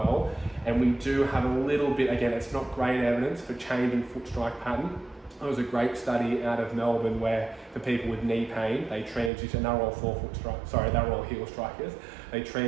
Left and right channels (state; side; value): drops out; left; at 9.3 s